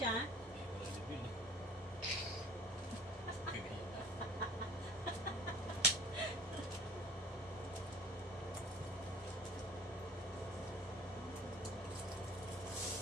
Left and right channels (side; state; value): both; normal; correlation 0.48